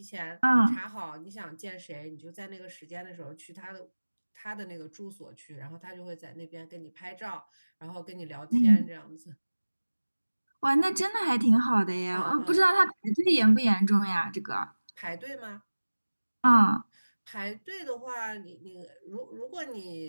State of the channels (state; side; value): inverted; both; correlation -1.00